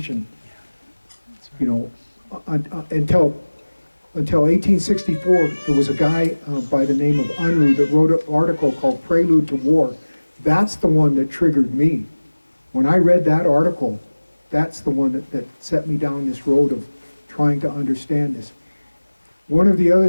until 1864. There was a guy by the name of Unruh that wrote an article called Prelude to War. That's the one that triggered me. When I read that article, that's the one that set me down this road of trying to understand this. One of the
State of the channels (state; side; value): inverted; both; correlation -1.00